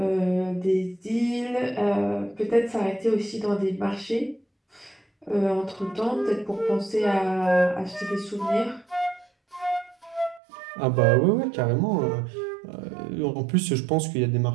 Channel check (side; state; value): left; drops out; at 10.4 s